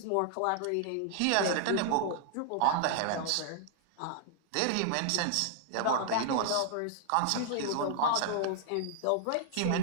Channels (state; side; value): different; both; correlation 0.00